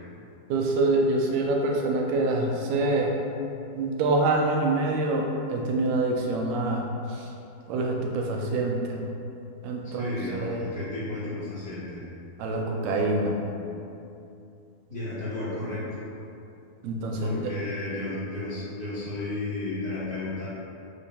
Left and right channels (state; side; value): late; left; 13 ms